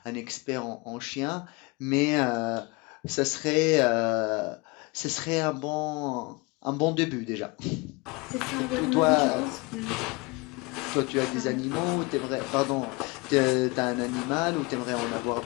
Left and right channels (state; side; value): quieter; right; 26.3 dB